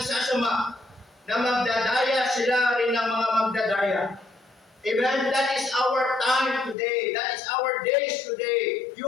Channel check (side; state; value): right; drops out; at 6.8 s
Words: sasama, na magdadaya sila rin ng mga magdadaya. Amen? That is our time today. That is our days today.